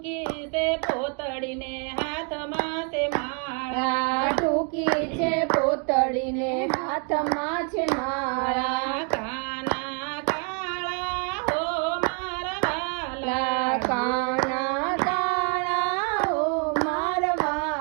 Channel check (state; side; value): quieter; left; 39.0 dB